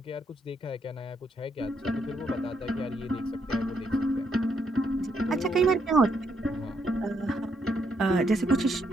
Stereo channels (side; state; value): both; normal; correlation 0.76